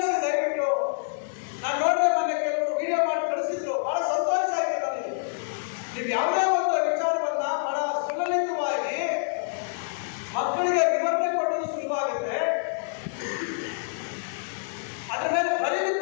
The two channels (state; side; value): silent; right; digital silence